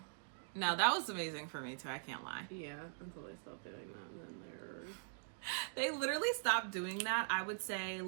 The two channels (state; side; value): silent; left; digital silence